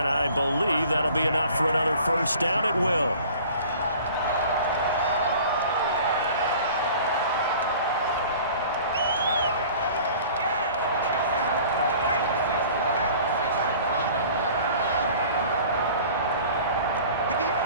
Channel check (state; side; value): inverted; both; correlation -0.47